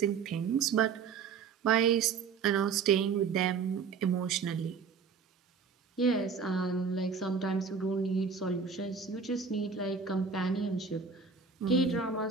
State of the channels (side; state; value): left; quieter; 5.7 dB